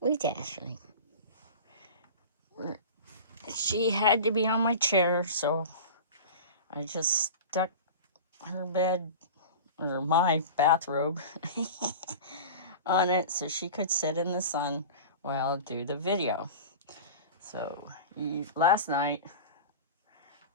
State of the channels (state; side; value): inverted; both; correlation -0.33